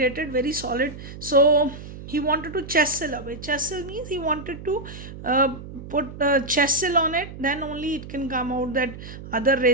very solid. So he wanted to chisel away. Chisel means he wanted to put chisel on it, then only it can come out. That other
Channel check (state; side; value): noise; right; hum, 13 dB below the sound